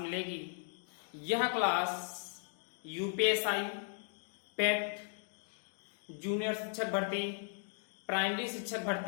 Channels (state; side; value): silent; right; 53 dB below the other